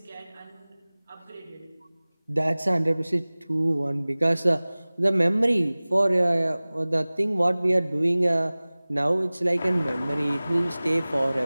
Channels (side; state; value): both; inverted; correlation -0.99